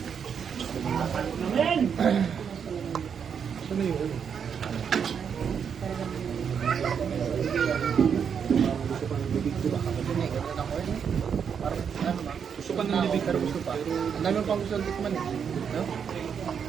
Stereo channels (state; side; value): quieter; left; 7.2 dB